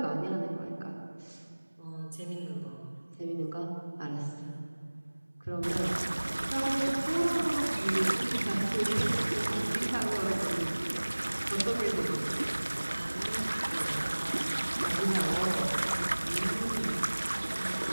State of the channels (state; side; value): inverted; both; correlation -1.00